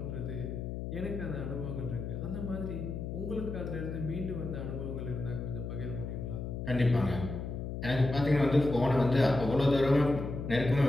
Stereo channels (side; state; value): left; noise; hum, 5 dB below the sound